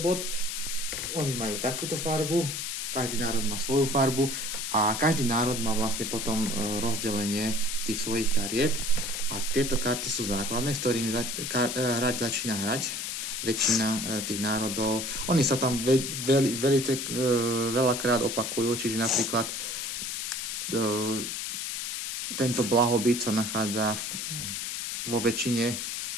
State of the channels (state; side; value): noise; left; hiss, 4 dB below the sound